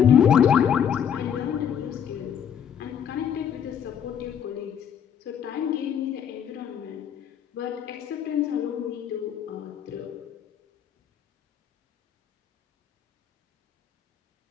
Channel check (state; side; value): quieter; right; 8.5 dB